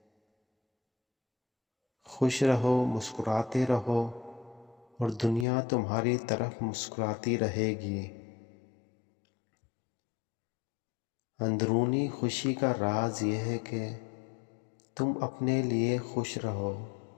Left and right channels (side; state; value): right; drops out; at 5.5 s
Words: خوش رہو، مسکراتے رہو، اور دنیا تمہاری طرف مسکراتی رہے گی۔ اندرونی خوشی کا راز یہ ہے کہ تم اپنے لیے خوش رہو،